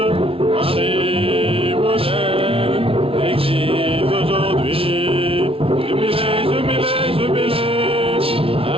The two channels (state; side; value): late; left; 0.26 ms